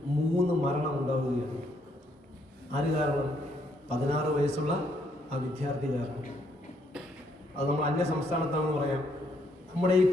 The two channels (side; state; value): both; normal; correlation 0.72